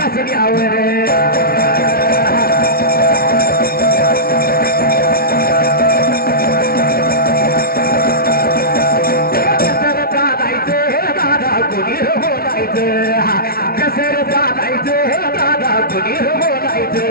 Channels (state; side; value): late; right; 0.44 ms